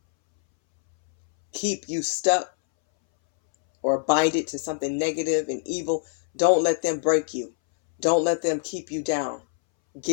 keep you stuck or bind it to something negative and evil. Don't let them break you. Don't let them keep you down.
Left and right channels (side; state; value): right; silent; 62 dB below the other